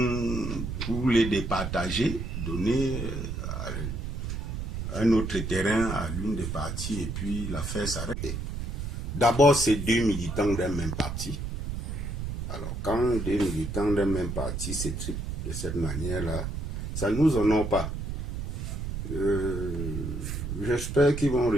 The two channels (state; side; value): noise; right; rumble, 4 dB below the sound